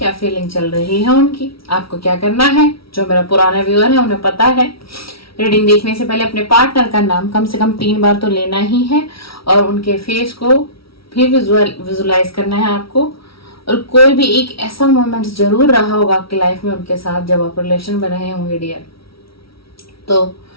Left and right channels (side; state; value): right; late; 0.75 ms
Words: फीलिंग चल रही है उनकी। आपको क्या करना है, जो मेरा पुराना व्यूअर है उन्हें पता है, रीडिंग देखने से पहले अपने पार्टनर का नाम कम से कम 3 बार तो लेना ही है और उनके फेस को भी विजुअलाइज करना है आपको। और कोई भी एक ऐसा मोमेंट जरूर रहा होगा आपकी लाइफ में उनके साथ जब आप रिलेशन में रहे होंगे डियर, तो